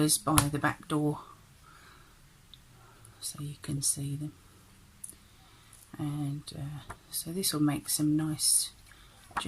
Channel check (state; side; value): identical; both; correlation 1.00